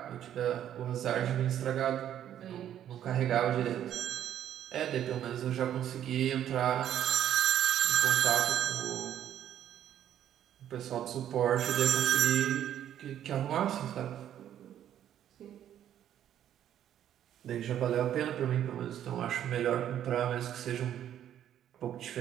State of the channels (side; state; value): left; quieter; 10.7 dB